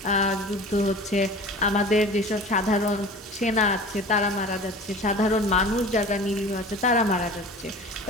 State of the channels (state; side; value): normal; both; correlation 0.39